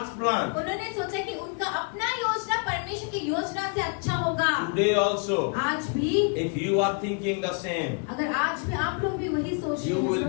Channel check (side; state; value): right; quieter; 38.2 dB